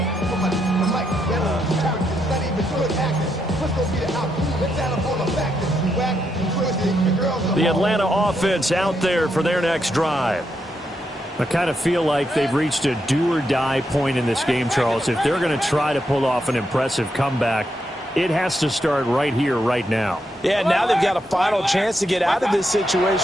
The Atlanta offense out there for their next drive. I kind of feel like they've reached a do-or-die point in this game, Charles. If they're going to try to pull off an impressive comeback, it has to start right here, right now. Yeah, now they've got a final chance to get out of this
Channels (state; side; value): normal; both; correlation 0.81